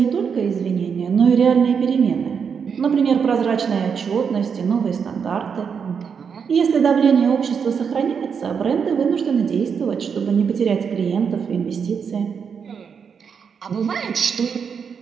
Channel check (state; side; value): quieter; left; 6.6 dB